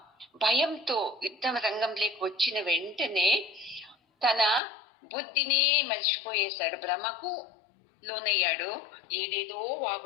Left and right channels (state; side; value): drops out; right; at 4.6 s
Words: భయంతో యుద్ధం రంగంలోకి వచ్చిన వెంటనే తన బుద్ధినే మర్చిపోయేశాడు, భ్రమకు లోనయ్యాడు, ఏదేదో